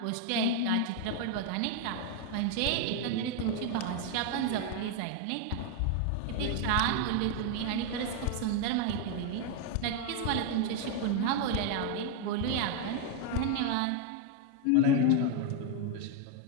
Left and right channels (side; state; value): both; different; correlation 0.01